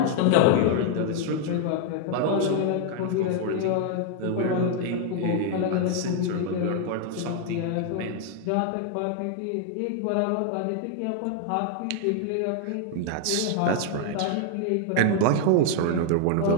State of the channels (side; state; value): both; different; correlation 0.00